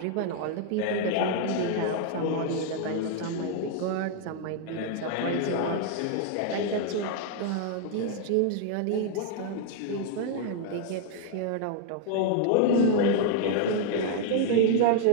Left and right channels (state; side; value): different; both; correlation 0.00